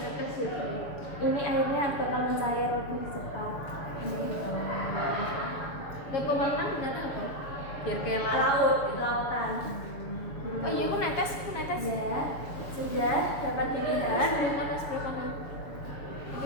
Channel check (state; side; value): late; right; 6.9 ms